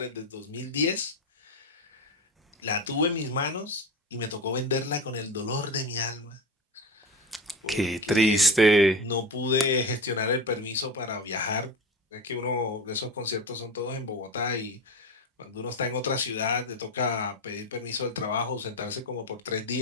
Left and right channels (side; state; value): both; normal; correlation 0.23